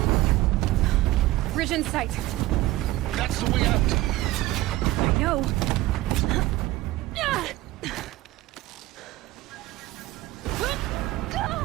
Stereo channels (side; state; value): left; quieter; 17.4 dB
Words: Bridge in sight. That's the way out. I know.